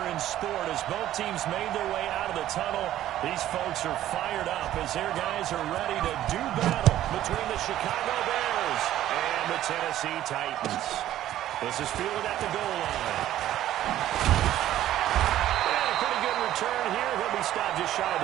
in sport as both teams made their way out of the tunnel. These folks are fired up as their guys are ready to do battle between the Chicago Bears and the Tennessee Titans. This is fielded at the goal line. Turn here. He'll be stopped just shy of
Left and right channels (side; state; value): left; quieter; 12.9 dB